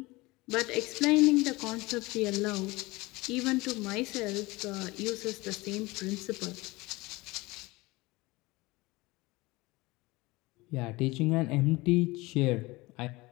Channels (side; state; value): right; quieter; 22.0 dB